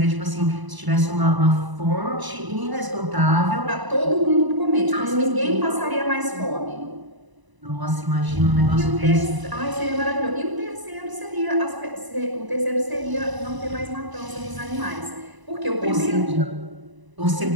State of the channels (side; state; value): left; late; 1.0 ms